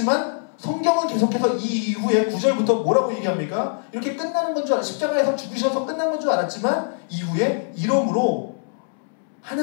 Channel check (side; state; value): right; silent; 64 dB below the other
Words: 성경은 계속해서 이 이후에 9절부터 뭐라고 얘기합니까? 이렇게 끝나는 건 줄 알았, 십자가에서 죽으셔서 끝난 건 줄 알았지만 이후에 이러므로